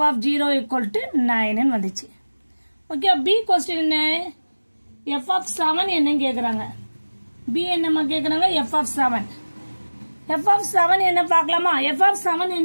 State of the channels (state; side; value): inverted; both; correlation -1.00